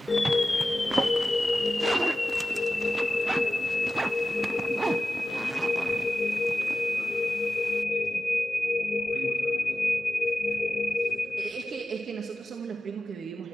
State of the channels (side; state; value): both; normal; correlation 0.94